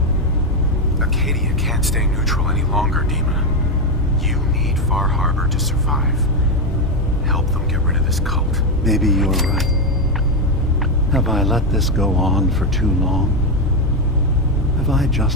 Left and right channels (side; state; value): both; normal; correlation 0.08